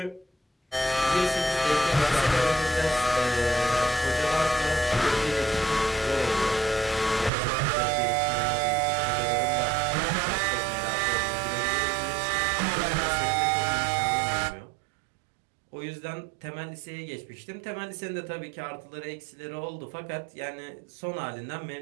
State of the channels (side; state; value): left; drops out; at 7.3 s